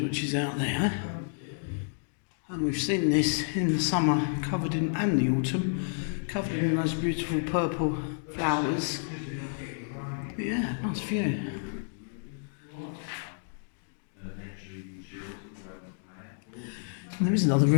is out there. And we've seen this in the summer, covered in, and the autumn, covered in those beautiful purple flowers. But yeah, nice view. And there is another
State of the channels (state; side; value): silent; right; digital silence